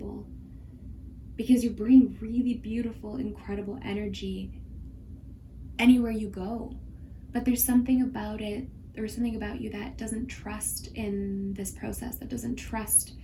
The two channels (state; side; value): identical; both; correlation 1.00